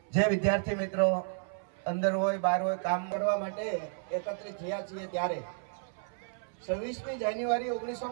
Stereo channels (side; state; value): left; silent; 56 dB below the other